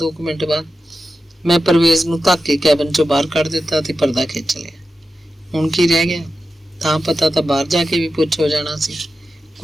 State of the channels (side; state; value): both; normal; correlation 0.92